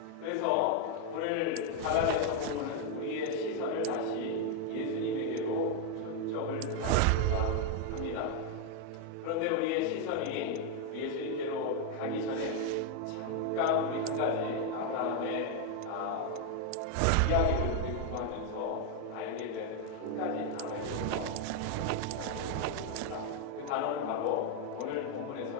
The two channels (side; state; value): both; different; correlation 0.01